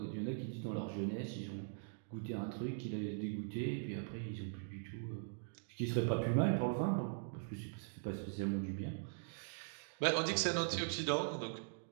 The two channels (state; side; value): silent; left; digital silence